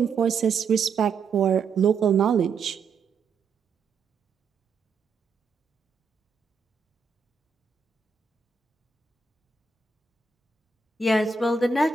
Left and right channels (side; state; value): left; quieter; 5.0 dB